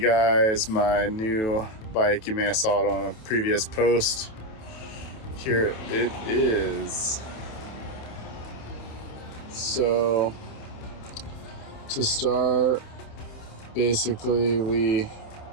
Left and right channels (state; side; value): late; right; 28 ms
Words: guys my new bike. You may have saw it on a previous post. Here it is. So to start, basically we